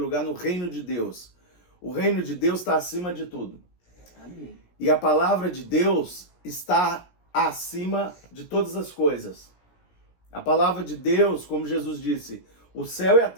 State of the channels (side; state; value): right; late; 17 ms